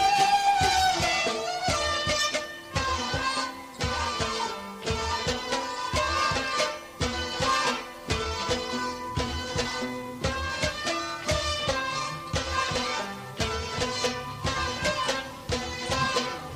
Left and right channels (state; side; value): identical; both; correlation 1.00